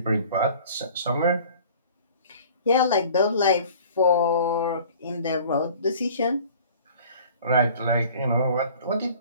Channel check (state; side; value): inverted; both; correlation -0.48